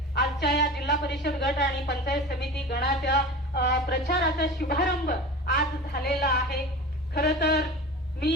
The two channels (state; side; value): normal; both; correlation 0.33